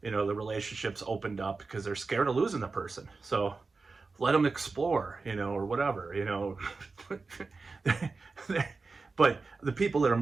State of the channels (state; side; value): quieter; left; 4.1 dB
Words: the relationship's opened up because they're scared of losing the person. So let them explore, or whatever, But the people that are